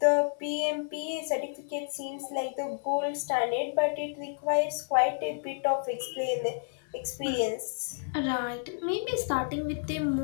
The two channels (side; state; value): right; silent; digital silence